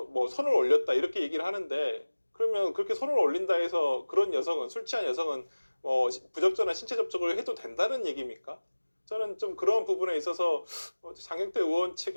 선을 올렸다 이렇게 얘기를 하는데, 그러면 그렇게 선을 올린다 해서 그런 여성은, 술 취한 여성은 부적절한 신체 접촉을 해도 된다는 얘기입니까? 저는 좀 그런 부분에 있어서 장경태 의원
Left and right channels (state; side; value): inverted; both; correlation -1.00